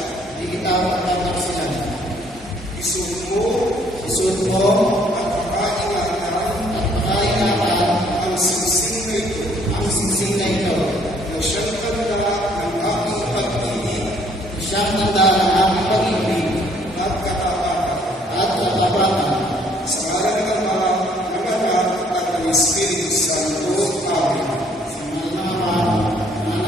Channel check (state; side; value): normal; both; correlation 0.63